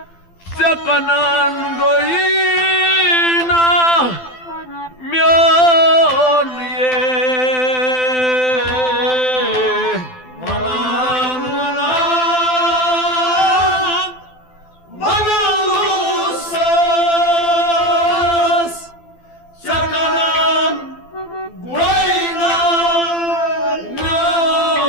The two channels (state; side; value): late; right; 12 ms